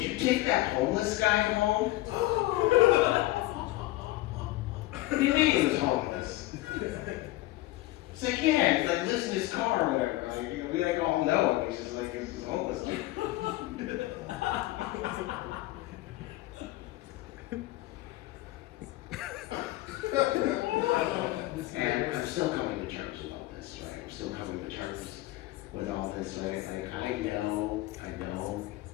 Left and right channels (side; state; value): right; quieter; 17.5 dB